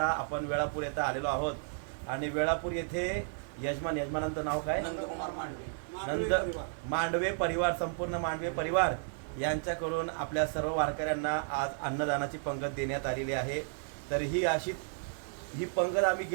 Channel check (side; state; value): left; silent; 56 dB below the other